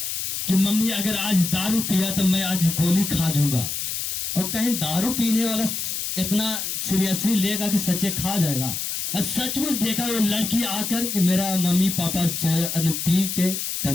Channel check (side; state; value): left; noise; hiss, 3 dB below the sound